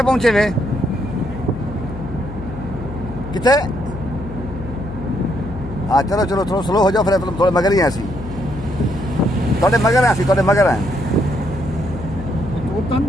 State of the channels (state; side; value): noise; left; hum, 11 dB below the sound